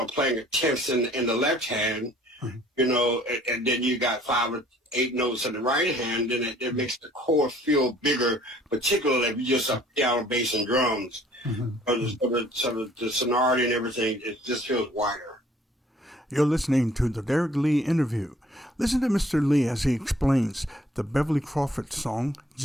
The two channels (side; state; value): both; normal; correlation 0.57